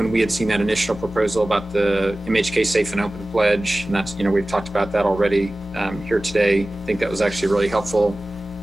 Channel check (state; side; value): normal; both; correlation 0.97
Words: we had seen that initial proposal about the MHK Safe and Open Pledge. And that's, we've talked about that already here today. I think that was actually really helpful